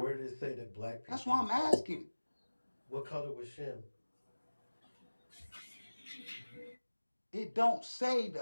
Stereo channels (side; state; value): both; inverted; correlation -1.00